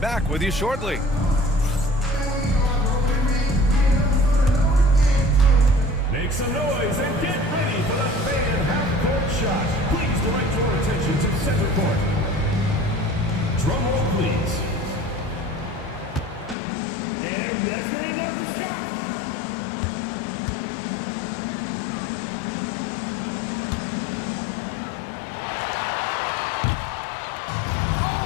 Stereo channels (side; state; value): right; drops out; at 16.6 s